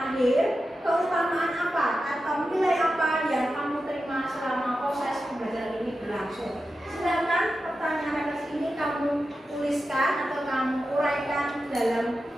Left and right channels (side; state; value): both; normal; correlation 0.91